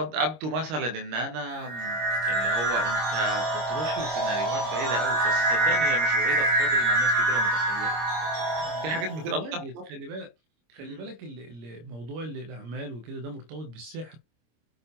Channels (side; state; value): left; late; 26 ms